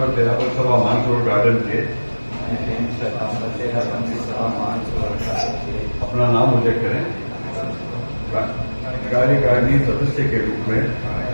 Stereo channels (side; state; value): both; inverted; correlation -1.00